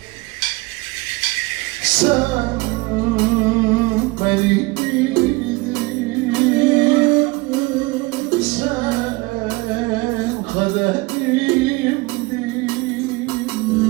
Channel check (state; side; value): quieter; left; 23.6 dB